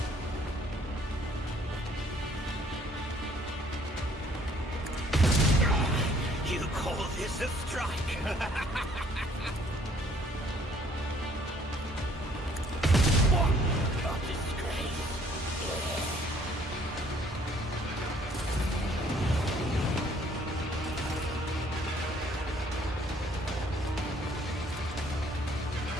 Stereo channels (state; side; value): normal; both; correlation 0.61